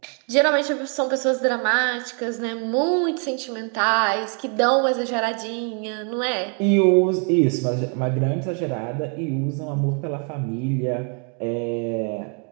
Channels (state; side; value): quieter; left; 39.9 dB